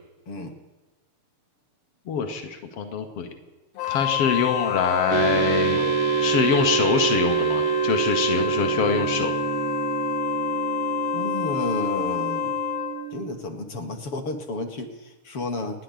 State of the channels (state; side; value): late; right; 7.5 ms